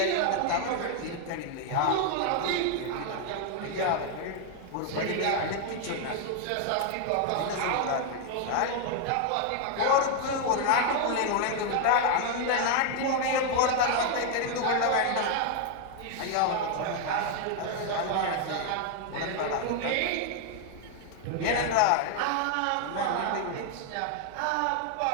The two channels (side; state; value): both; different; correlation 0.00